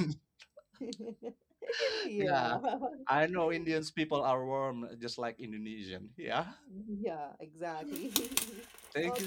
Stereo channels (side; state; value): both; identical; correlation 1.00